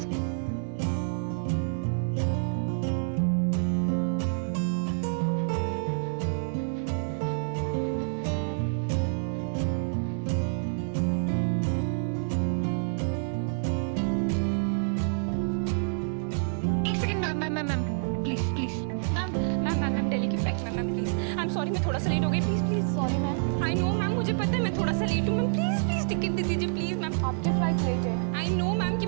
सॉरी, मैं थोड़ा सा लेट हो गई, please. Sorry ma'am. I know ma'am, मुझे पता है मैं थोड़ा सा लेट हूँ मैम। प्लीज टिकट दे दीजिए प्लीज मैम। आपकी फ्लाइट लेट है। आई नो मैम कि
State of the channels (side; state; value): left; silent; digital silence